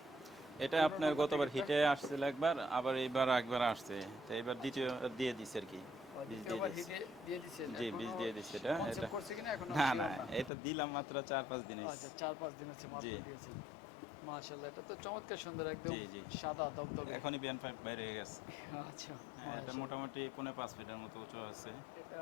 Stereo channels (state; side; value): drops out; right; at 10.5 s